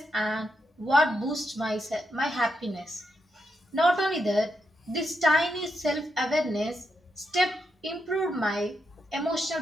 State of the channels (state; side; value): normal; both; correlation 0.83